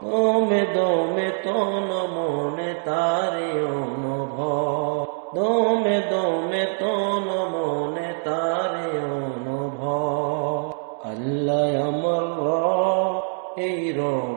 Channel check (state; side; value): silent; left; digital silence